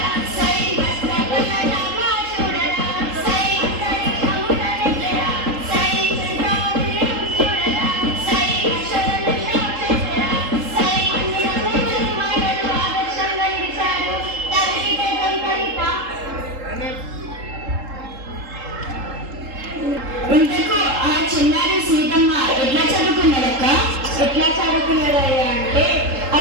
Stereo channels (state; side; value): late; left; 3.7 ms